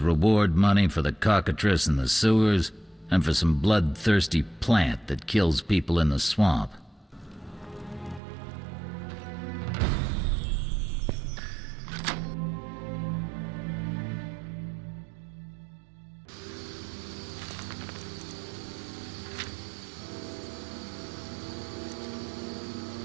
reward money for the cockatrice in the sewers and for some bloodthirsty plant that kills people in the swamp.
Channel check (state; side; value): drops out; left; at 8.2 s